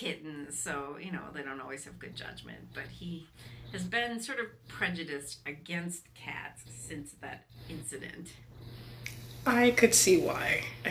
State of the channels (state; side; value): identical; both; correlation 1.00